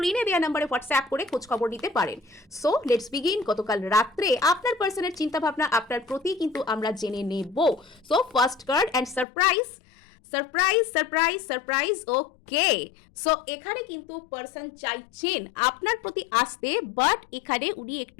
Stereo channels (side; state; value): right; drops out; at 9.2 s